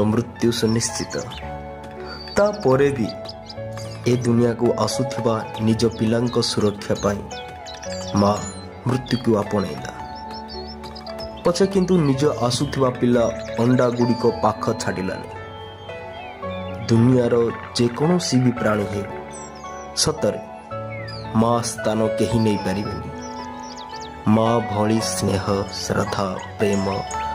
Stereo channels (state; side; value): identical; both; correlation 1.00